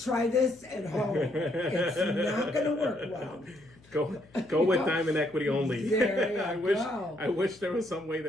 this at home. It's not going to work well. Go with Diamond Equity only. There you I wish there was some way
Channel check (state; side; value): noise; left; hum, 27 dB below the sound